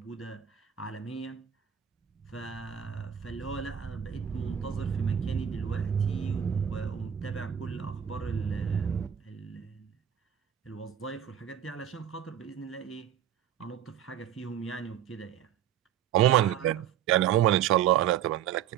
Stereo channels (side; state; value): left; quieter; 9.6 dB